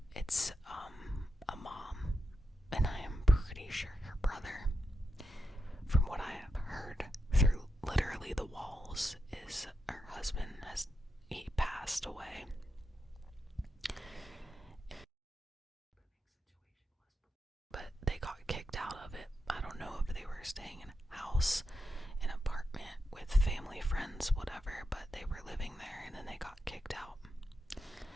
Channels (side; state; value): both; normal; correlation 0.87